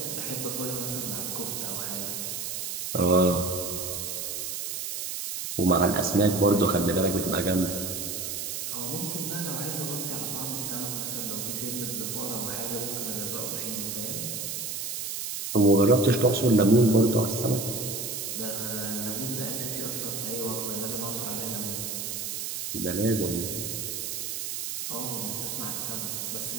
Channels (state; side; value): noise; right; hiss, 4 dB below the sound